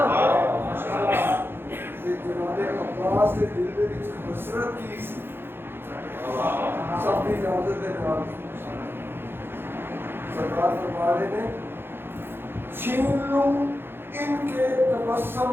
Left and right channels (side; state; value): left; late; 0.10 ms